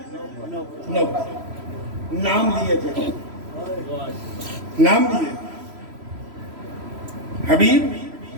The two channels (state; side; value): late; left; 3.0 ms